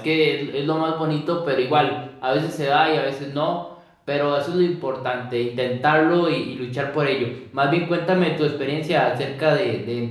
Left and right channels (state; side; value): identical; both; correlation 1.00